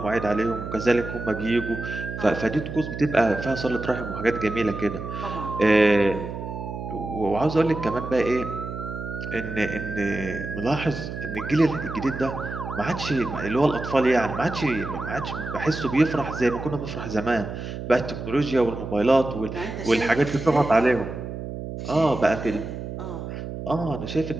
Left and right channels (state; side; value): noise; right; hum, 7 dB below the sound